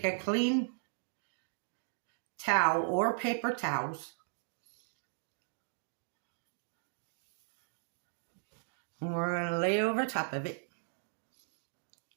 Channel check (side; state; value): left; silent; digital silence